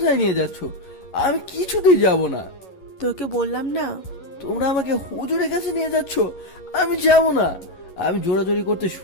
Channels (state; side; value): late; right; 11 ms